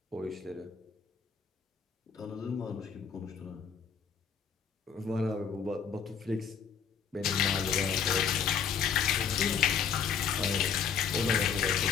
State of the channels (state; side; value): quieter; right; 6.9 dB